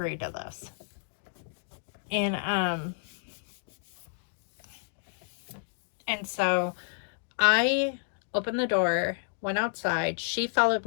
to this. And so I opened the door, went outside. She followed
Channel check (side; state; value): right; silent; digital silence